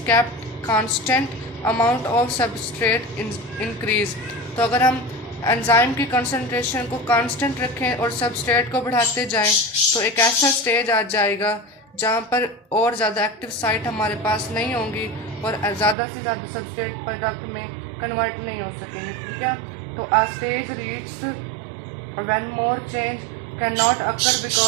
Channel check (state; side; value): drops out; left; at 16.0 s